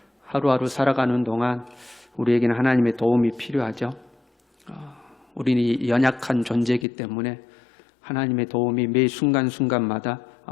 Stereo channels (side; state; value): right; drops out; at 6.9 s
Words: 하루하루 살아가는 동안 우리에게는 하나님의 도움이 필요하죠. 우리는 연약한 존재이기 때문에 하나님의 도움이 매 순간순간마다